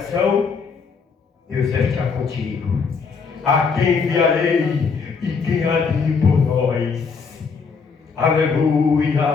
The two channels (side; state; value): right; quieter; 5.3 dB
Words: Deus vai estar contigo. A quem enviarei e quem há de ir por nós?